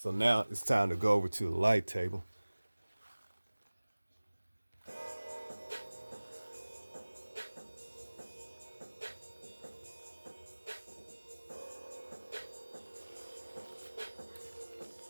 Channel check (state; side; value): inverted; both; correlation -1.00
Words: now it's time to go over to the light table.